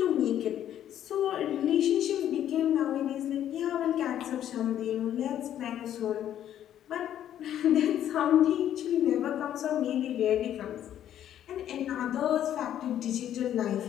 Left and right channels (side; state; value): right; quieter; 10.9 dB